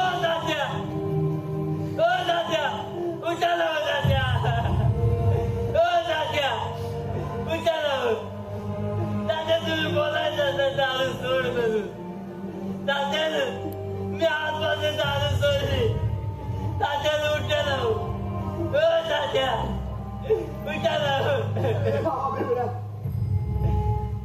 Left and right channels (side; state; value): both; identical; correlation 1.00